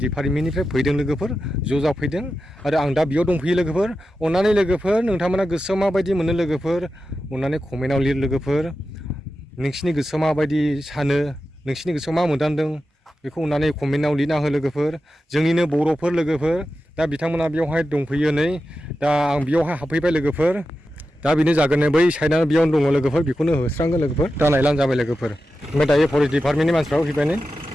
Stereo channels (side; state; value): both; normal; correlation 0.91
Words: डिपार्टमेन्टनिफ्राय फैदों लोगोफोर ज' जाफैदों आरो आं दा बेयाव दंफैयो लोगोफोर अननानै लोगोफोर नोंथांमोना गोसोआव माबायदि मोनो लोगोफोर अननानै कमेन्टआव लिर लोगोफोर नोंसिनि गोसोआव माबायदि सानो नोंसिनि गोसोआव मा मोनदांदों बेखौ अननानै कमेन्टआव लिरना हो लोगोफोर जोंनिनो बर'फोर लोगोफोर दा बिथांमोना बेयावहाय दंफैयो नै दा आं बेयावहाय हाबफैबाय लोगोफोर दा बेनो जागोन बै साइडआनो बेयावनो दङ लोगोफोर बेखौनो होस्रांगोन लोगोफोर दा नायलां जाबाय लोगोफोर ओमफ्राय दायो फरेस्ट डिपार्टमेन्टनि मानसिफ्राबो फैबाय नै